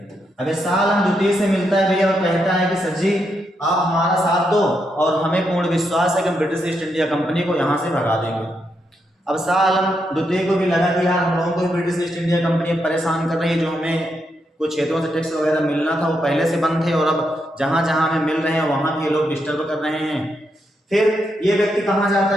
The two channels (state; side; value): normal; both; correlation 0.81